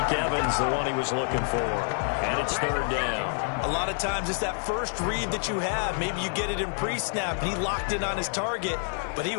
Evans, the one he was looking for. And it's 3rd down. A lot of times it's that first read that you have. Maybe you get it in pre-snap, and he locked in on his target, but he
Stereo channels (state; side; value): silent; right; 55 dB below the other